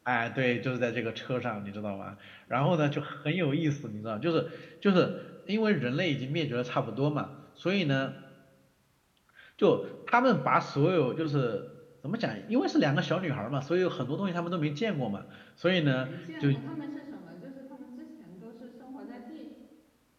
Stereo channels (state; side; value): identical; both; correlation 1.00